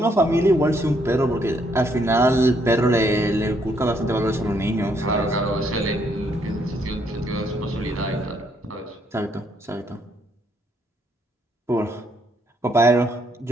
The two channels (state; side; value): normal; both; correlation 0.72